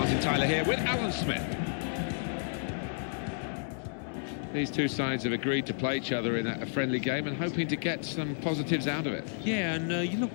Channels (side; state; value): right; silent; digital silence